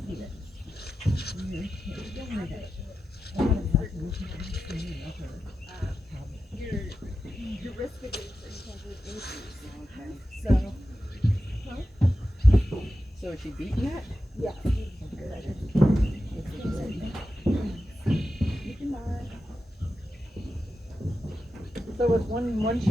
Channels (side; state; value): both; normal; correlation 0.91